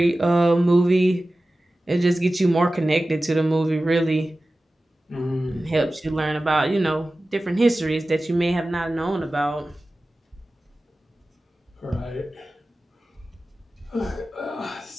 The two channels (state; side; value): normal; both; correlation 0.96